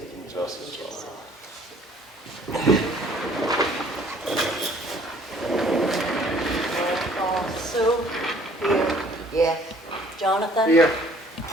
and justice for all. Roll call. Sue? Here. Yes. Jonathan? Here.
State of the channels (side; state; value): both; normal; correlation 0.57